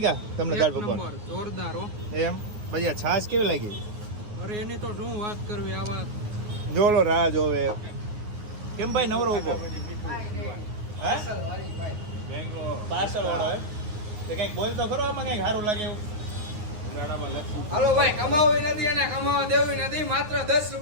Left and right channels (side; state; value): left; late; 9.5 ms